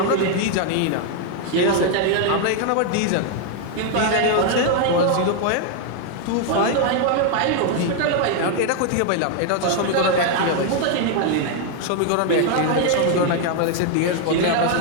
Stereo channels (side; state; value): both; different; correlation 0.00